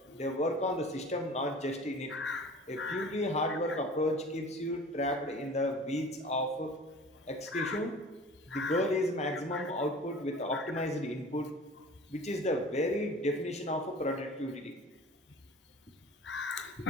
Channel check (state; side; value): normal; both; correlation 0.41